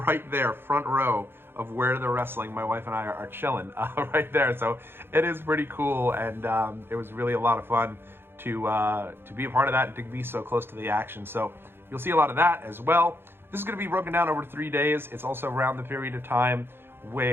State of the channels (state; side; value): late; left; 0.11 ms